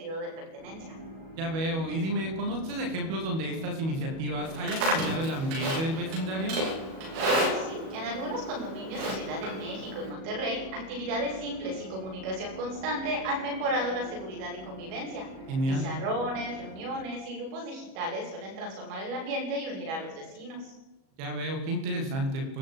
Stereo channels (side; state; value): left; late; 37 ms